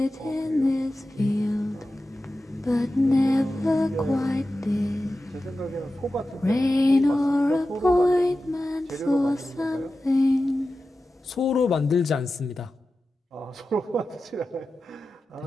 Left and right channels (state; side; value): normal; both; correlation 0.93